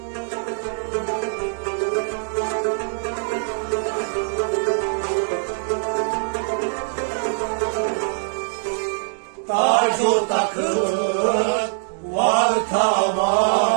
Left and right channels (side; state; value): left; silent; digital silence